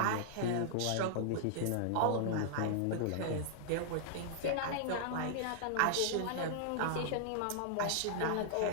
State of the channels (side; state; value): both; different; correlation -0.01